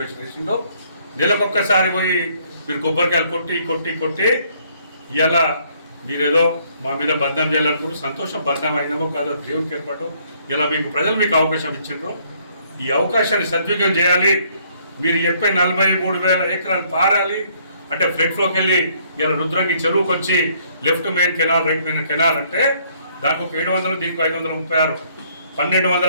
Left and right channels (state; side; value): inverted; both; correlation -0.65